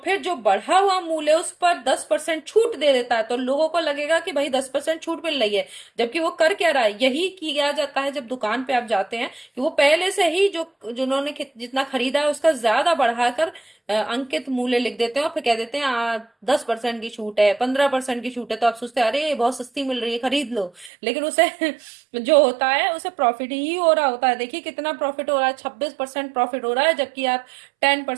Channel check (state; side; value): drops out; left; at 20.9 s